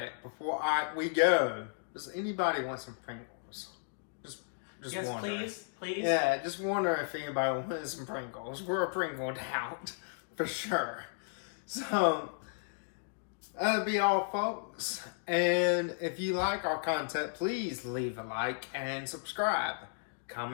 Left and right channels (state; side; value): silent; right; digital silence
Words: before we go, does anybody want some Pringles? Just yes, wondering. please. Yeah, just wonder if anybody wants some Pringles. We're a Pringled out, for sure. So, that'll be all, folks. And if you like our content, please leave a like and subscribe.